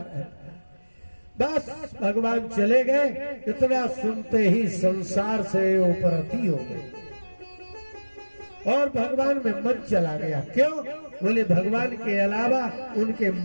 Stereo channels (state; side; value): inverted; both; correlation -1.00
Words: है। बस भगवान चले गए, इतना सुनते ही संसार से उपरति हो गए और भगवान में मन चला गया। क्यों? बोले भगवान के अलावा उनके